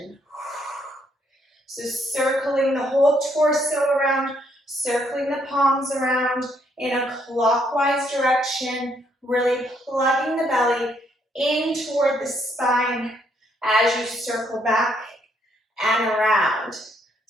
So circling the whole torso around, circling the palms around in a clockwise direction, really plugging the belly in toward the spine as you circle back and around.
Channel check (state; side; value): normal; both; correlation 0.71